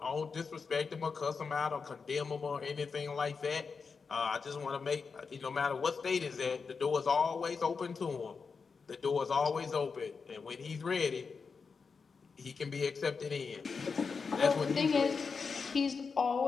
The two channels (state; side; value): quieter; right; 5.2 dB